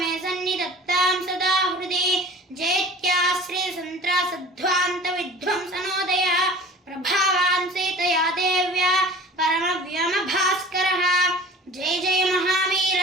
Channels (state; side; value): normal; both; correlation 0.43